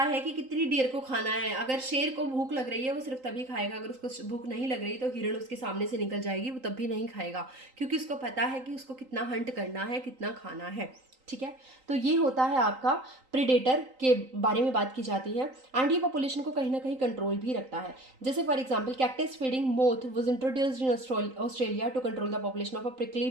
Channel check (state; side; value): late; left; 3.9 ms